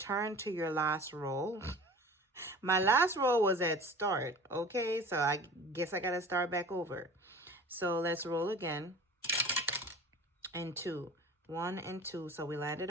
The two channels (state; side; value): normal; both; correlation 0.41